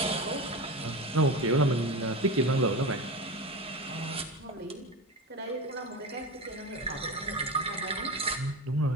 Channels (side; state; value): both; normal; correlation 0.24